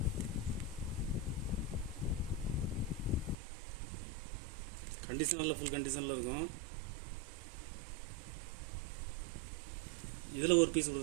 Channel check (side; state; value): left; drops out; at 3.4 s